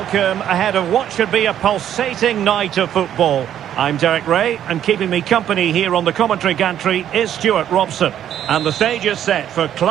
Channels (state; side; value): quieter; left; 10.5 dB